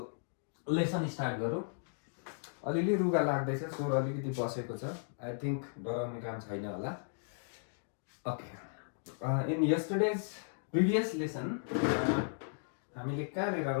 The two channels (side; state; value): right; silent; digital silence